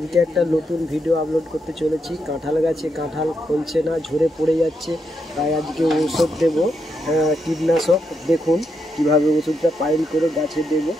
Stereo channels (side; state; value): both; normal; correlation 0.81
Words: একটা নতুন ভিডিও আপলোড করতে চলেছি। কাঁঠাল গাছে কাঁঠাল ফলছে না, ঝরে পড়ে যাচ্ছে, তাই আজকে ওষুধ দেব, কীটনাশক। দেখুন কিভাবে ওষুধটা পাইল করে গাছে দেব।